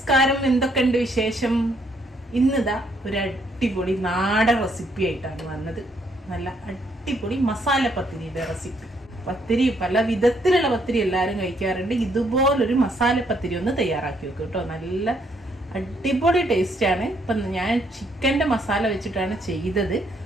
എന്തൊക്കെയുണ്ട് വിശേഷം? ഇന്നിതാ ഒരു അടിപൊളി നാടൻ റെസിപ്പി ആയിട്ടാണ് വന്നത്. നല്ല അടിപൊളി മസാല പത്തിരിയുടെ റെസിപ്പി. പത്തിരി പല വിധത്തിലുള്ള പത്തിരി എല്ലാവരും കഴിക്കാറുണ്ട്. ഇതുപോലൊരു മസാല പത്തിരി ഒന്ന് തയ്യാറാക്കി വെക്കും കേട്ടോ. നല്ല അടിപൊളി ടേസ്റ്റാണ്. ഇപ്പം ഞാൻ ചിക്കൻ്റെ മസാല വെച്ചിട്ടാണ് ചെയ്തത്.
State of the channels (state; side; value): normal; both; correlation 0.71